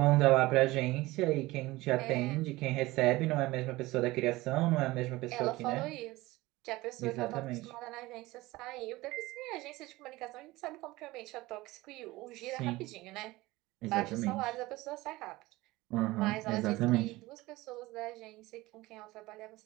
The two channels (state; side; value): quieter; left; 19.7 dB